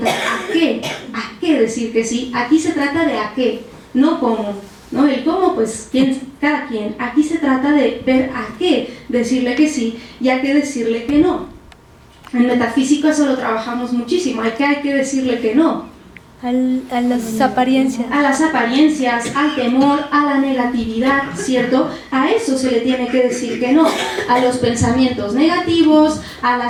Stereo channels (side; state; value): both; identical; correlation 1.00